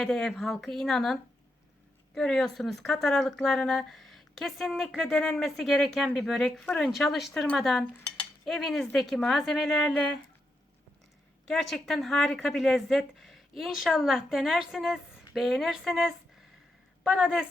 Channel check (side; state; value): both; normal; correlation 0.83